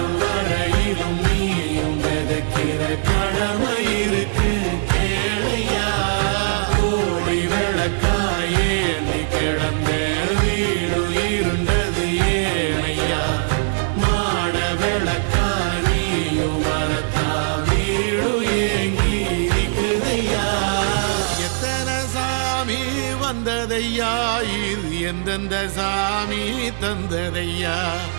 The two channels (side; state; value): left; silent; 65 dB below the other